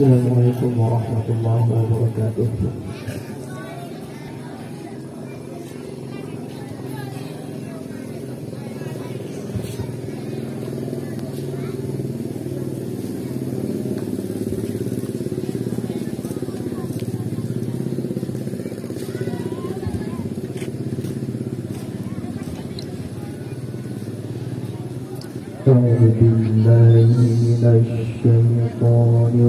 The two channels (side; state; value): both; identical; correlation 1.00